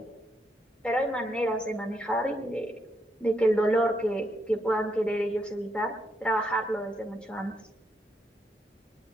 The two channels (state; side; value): normal; both; correlation 0.78